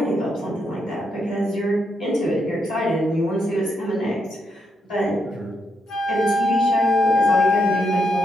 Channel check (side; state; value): both; normal; correlation 0.79